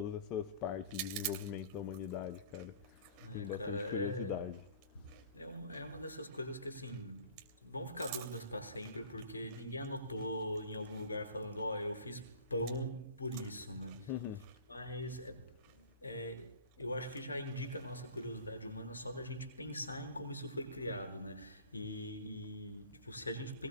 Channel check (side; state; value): both; inverted; correlation -0.44